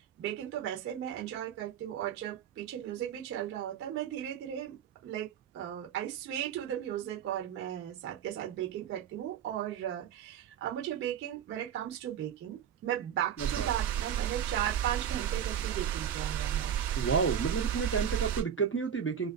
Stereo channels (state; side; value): quieter; left; 8.9 dB